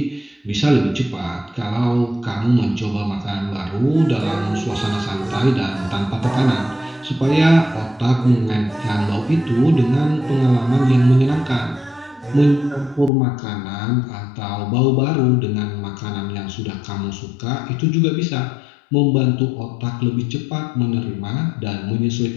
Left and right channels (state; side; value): drops out; right; at 13.1 s